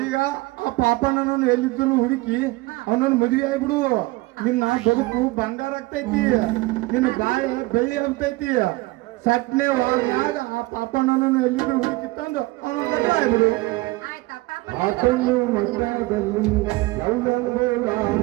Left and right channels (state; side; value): quieter; left; 21.5 dB